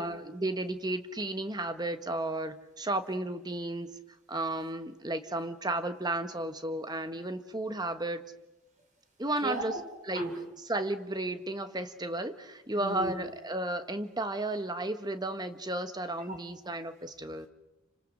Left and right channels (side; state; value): both; normal; correlation 0.44